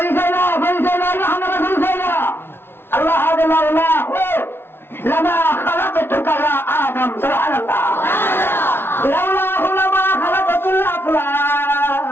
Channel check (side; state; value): right; late; 0.11 ms